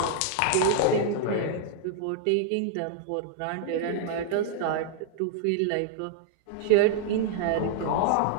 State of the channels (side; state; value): both; different; correlation -0.01